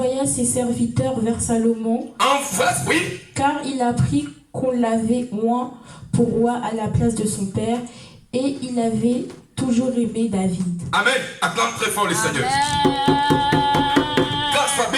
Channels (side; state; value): both; identical; correlation 1.00